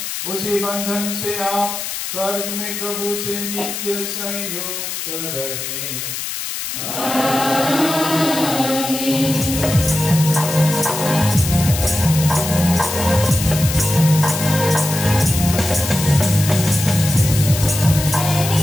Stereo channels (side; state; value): left; noise; hiss, 5 dB below the sound